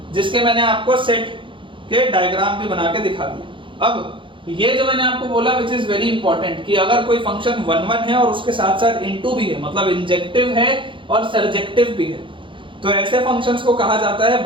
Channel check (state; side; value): late; left; 0.24 ms